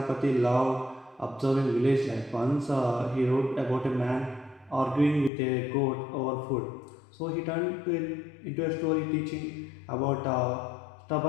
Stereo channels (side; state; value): right; drops out; at 5.3 s